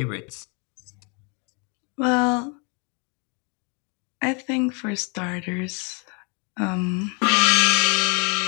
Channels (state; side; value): quieter; right; 34.8 dB